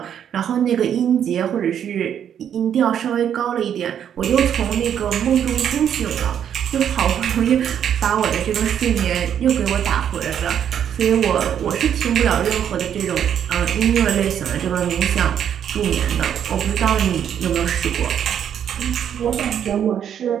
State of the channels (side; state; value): left; quieter; 9.1 dB